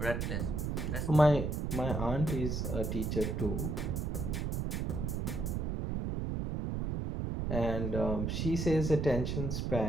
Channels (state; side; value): noise; right; rumble, 1 dB below the sound